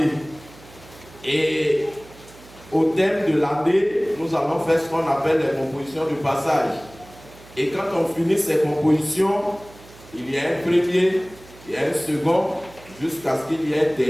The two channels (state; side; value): noise; right; hum, 22 dB below the sound